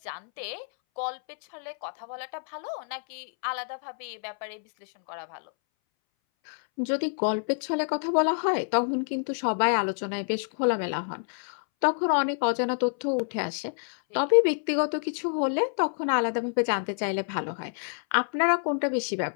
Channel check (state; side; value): silent; right; 60 dB below the other